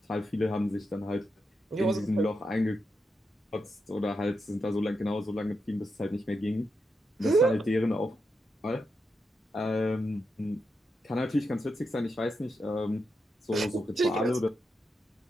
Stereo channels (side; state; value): both; normal; correlation 0.85